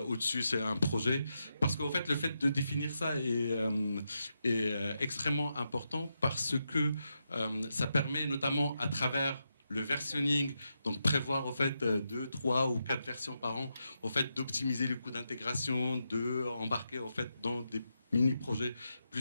au-dessus c'est un projet. Parce qu'en fait, le fait de définir ça est extrêmement important parce que ça permet notamment à travers le versionning, donc prévoir en fait 2, 3 ou 4 versions par an, en fait d'optimiser les coûts d'intégration, de embarquer en fait dans des mini-projets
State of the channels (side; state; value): both; inverted; correlation -0.85